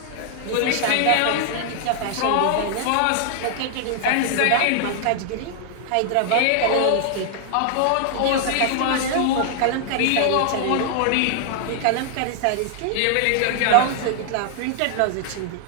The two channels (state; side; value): different; both; correlation 0.00